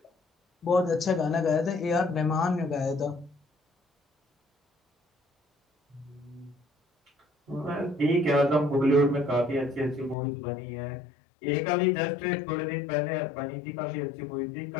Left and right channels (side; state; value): right; drops out; at 10.2 s